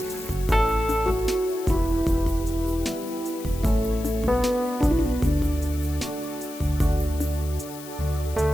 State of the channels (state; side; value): noise; left; hiss, 16 dB below the sound